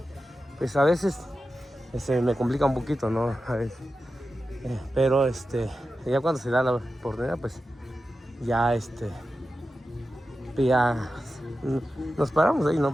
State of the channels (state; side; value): normal; both; correlation 0.92